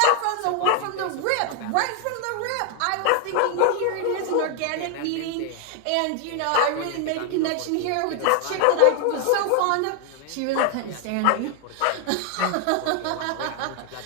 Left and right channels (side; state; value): both; different; correlation 0.00